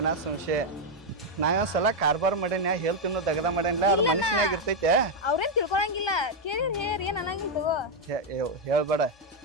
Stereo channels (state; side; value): normal; both; correlation 0.01